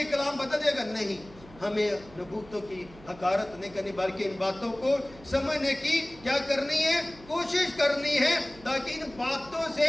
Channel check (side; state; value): right; noise; hum, 21 dB below the sound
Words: کلام بدل جائے گا؟ نہیں، ہمیں نبوتوں کی حقارت نہیں کرنی، بلکہ ان باتوں کو سمجھنے کی کیا کرنی ہے؟ کوشش کرنی ہے، تاکہ ان باتوں